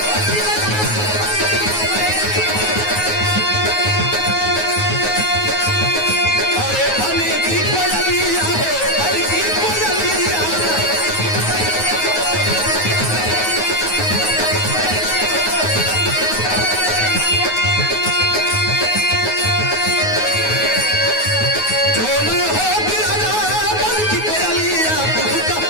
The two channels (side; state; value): right; late; 9.4 ms